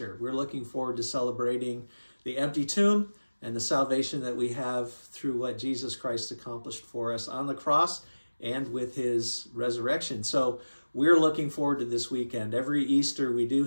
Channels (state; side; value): inverted; both; correlation -1.00